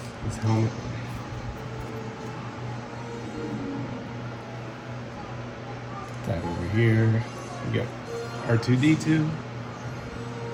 his helmet. That over here. We got R2-D2,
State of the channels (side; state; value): both; identical; correlation 1.00